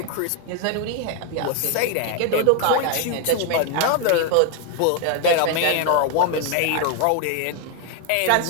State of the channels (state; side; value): different; both; correlation 0.01